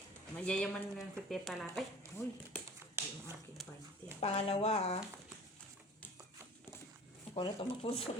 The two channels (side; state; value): both; normal; correlation 0.44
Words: mayayaman ng si Tita Lara. Ay, uy. Yung aking panty ah. Pangalawa, ah. Ako na ito